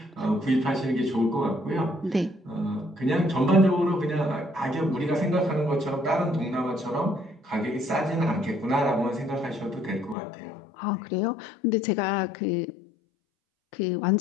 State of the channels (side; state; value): right; drops out; at 10.2 s